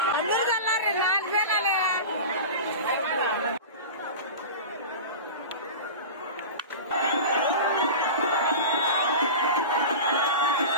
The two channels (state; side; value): inverted; both; correlation -0.30